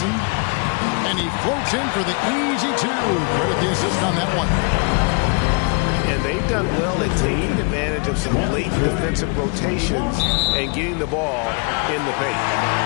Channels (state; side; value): quieter; right; 33.8 dB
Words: And he floats in for the easy 2. Credit the assist on that one. And they've done well at taking advantage of some late defensive rotations and getting the ball in the paint.